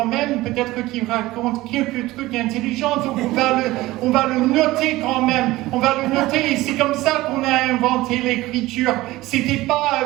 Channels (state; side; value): quieter; left; 18.2 dB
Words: même, peut-être qu'il raconte quelques trucs intelligents, donc on va le noter quand même, on va le noter, et c'est comme ça qu'on a inventé l'écriture. C'était pas